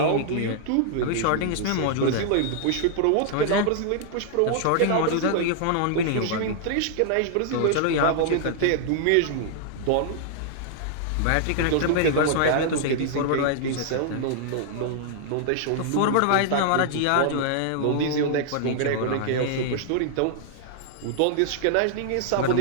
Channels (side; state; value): both; different; correlation -0.01